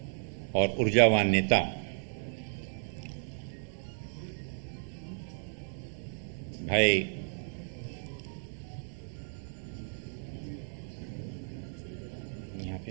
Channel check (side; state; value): left; silent; digital silence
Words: और ऊर्जावान नेता भाई यहाँ पे